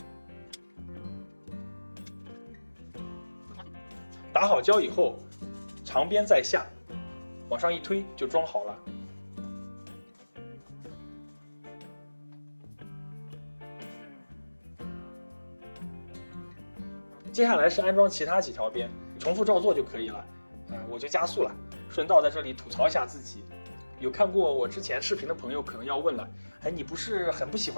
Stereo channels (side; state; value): both; inverted; correlation -1.00